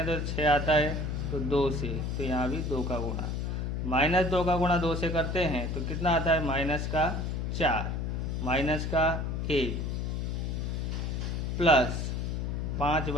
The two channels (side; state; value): left; noise; hum, 1 dB below the sound